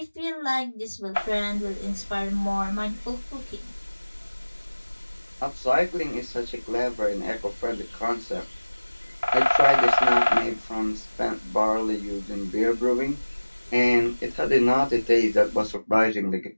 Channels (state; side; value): inverted; both; correlation -1.00